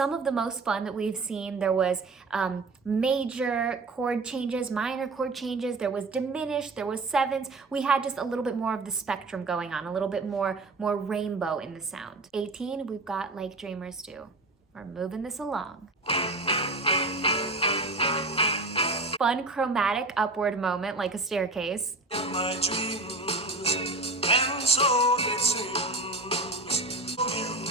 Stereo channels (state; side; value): quieter; left; 3.1 dB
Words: of the most fun that we've seen. There was major chord changes, minor chord changes. There was diminished. There was sevenths. We had just a little bit more of the spectrum going on, a little bit more rainbow in the sound. 18, we've got Like Dreamers Do. We're moving this along. Fun chromatic upward moment like a staircase. In my dreams, and so it seems,